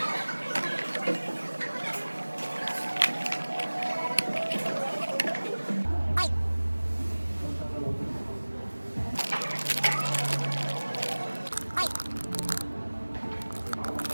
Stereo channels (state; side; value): inverted; both; correlation -1.00